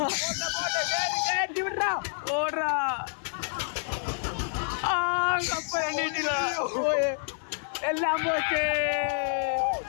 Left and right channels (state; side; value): silent; right; 59 dB below the other